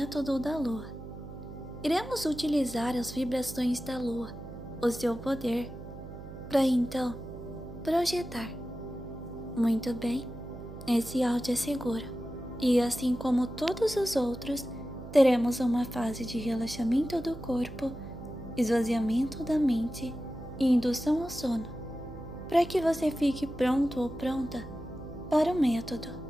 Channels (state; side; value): noise; right; hum, 13 dB below the sound